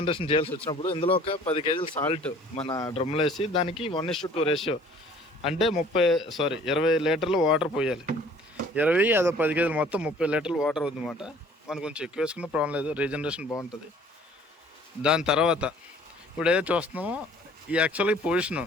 చేయాల్సి వచ్చినప్పుడు ఇందులో ఒక 10 kgs సాల్ట్ మన డ్రమ్లో వేసి దానికి 1:2 రేషియో అంటే 20 లీటర్లు వాటర్ పోయాలి. 20 అదో 10 kgs మొత్తం 30 లీటర్లు వాటర్ అవుతుందన్నమాట. మనం కొంచెం ఎక్కువ వేసుకున్న ప్రాబ్లం లేదు, రీజనరేషన్ బాగుంటుంది. దాని తర్వాత ఇప్పుడు ఏదైతే చూస్తున్నామో ఈ యాక్చువల్గా పొజిషను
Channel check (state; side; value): normal; both; correlation 0.53